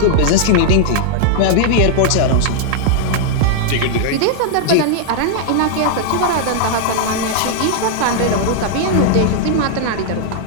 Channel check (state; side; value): different; both; correlation -0.01